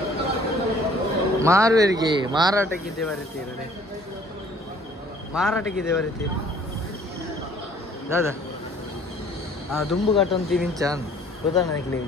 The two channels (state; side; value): normal; both; correlation 0.55